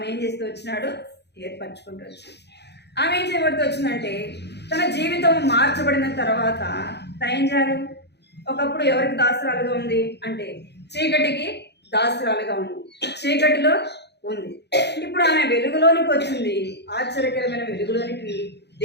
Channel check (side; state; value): right; late; 0.49 ms